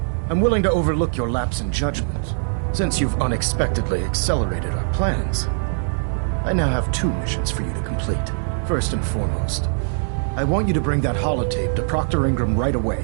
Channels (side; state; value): left; silent; 60 dB below the other